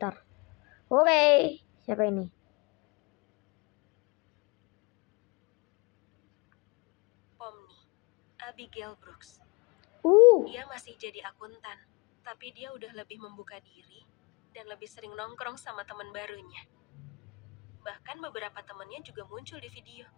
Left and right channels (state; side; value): quieter; right; 28.5 dB